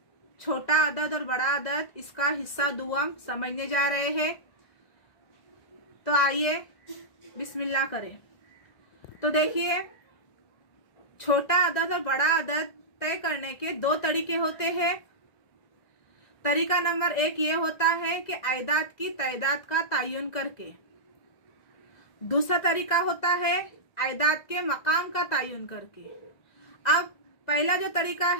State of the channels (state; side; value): late; right; 1.9 ms